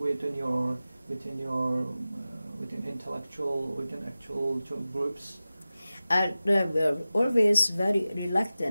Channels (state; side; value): inverted; both; correlation -0.96